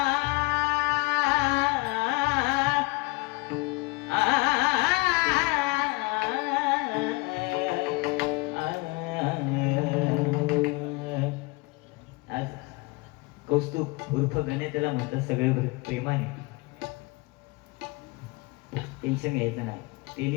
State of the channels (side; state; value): right; quieter; 24.6 dB